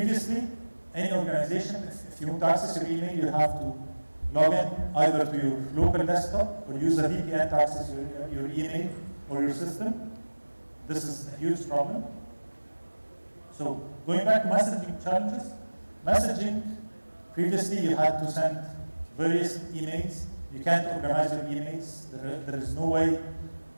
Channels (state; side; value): inverted; both; correlation -1.00